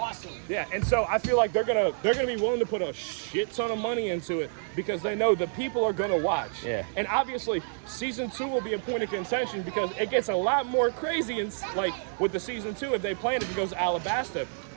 Yeah, and so I feel like they're gonna be willing to put a shit ton of money into it because they know the people are gonna watch. Yeah. And obviously, season 2 will be a point of contention because it gets a lot more crazy and like with the season 2 if they plan it goes to Alabasta.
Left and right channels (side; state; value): left; silent; digital silence